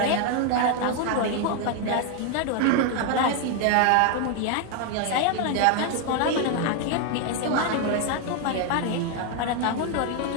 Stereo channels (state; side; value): different; both; correlation 0.01